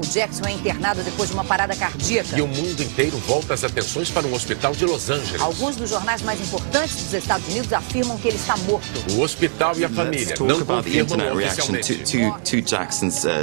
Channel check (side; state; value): left; silent; digital silence